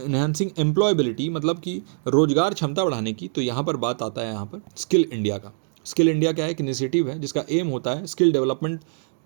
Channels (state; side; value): silent; left; digital silence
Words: एम्प्लॉयबिलिटी, मतलब कि रोजगार क्षमता बढ़ाने की, तो यहाँ पर बात आता है यहाँ पर स्किल इंडिया का। स्किल इंडिया क्या है? एक इनिशिएटिव है जिसका एम होता है स्किल डेवलपमेंट